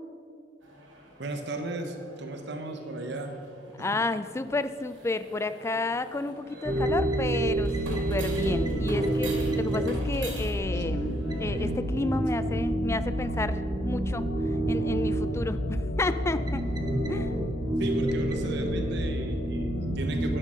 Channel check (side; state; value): both; normal; correlation 0.71